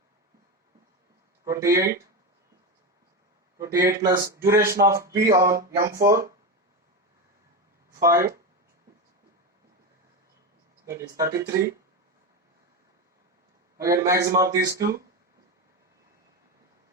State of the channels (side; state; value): both; normal; correlation 0.16